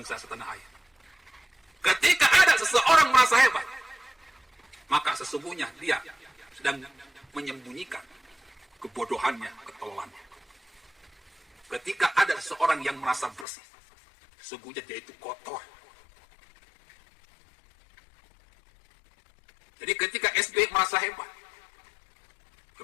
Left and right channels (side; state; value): right; drops out; at 13.5 s